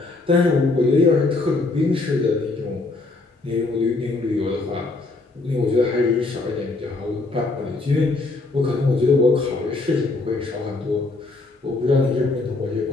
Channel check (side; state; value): right; quieter; 3.4 dB